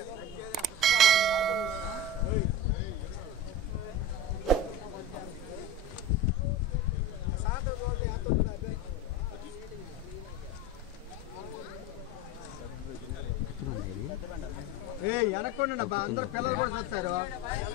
వెనక్కోండి అబ్బా, అందరూ పిల్లలు కూడా చూస్తారు.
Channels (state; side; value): normal; both; correlation 0.27